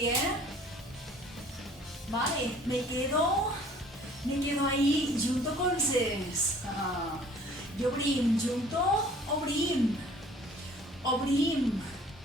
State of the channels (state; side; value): normal; both; correlation 0.53